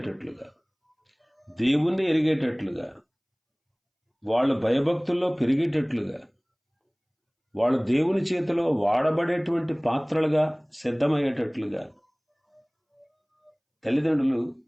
దేవుణ్ణి ఎరిగేటట్లుగా, వాళ్ళు భయభక్తుల్లో పెరిగేటట్లుగా, వాళ్ళు దేవుని చేతిలో వాడబడేటువంటి పాత్రలుగా సిద్ధమయ్యేటట్లుగా తల్లిదండ్రులు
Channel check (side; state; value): both; identical; correlation 1.00